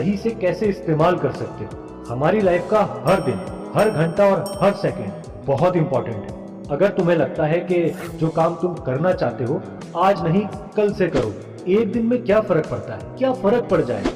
से कैसे इस्तेमाल कर सकते हो। हमारी लाइफ का हर दिन, हर घंटा और हर सेकंड बहुत इंपॉर्टेंट है। अगर तुम्हें लगता है कि जो काम तुम करना चाहते हो आज नहीं कल से करो, एक दिन में क्या फर्क पड़ता है, क्या फर्क पड़ जाए,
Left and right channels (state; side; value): identical; both; correlation 1.00